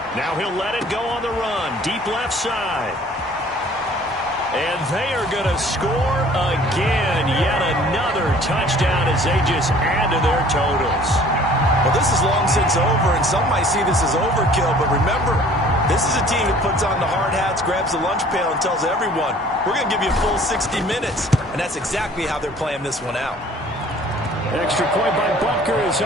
Now he'll let it go on the run. Deep left side. And they are going to score again. Yet another touchdown as they just add to their totals. Well, this is long since over, and some might see this as overkill. But remember, this is a team that puts on the hard hats, grabs the lunch pail, and tells everyone, we're going to give you a full 60 minutes. And that's exactly how they're playing this one out. Extra point by Butker is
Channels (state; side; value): normal; both; correlation 0.52